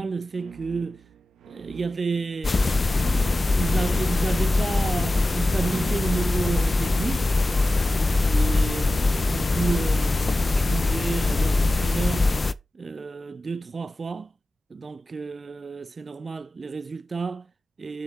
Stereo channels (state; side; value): normal; both; correlation 0.94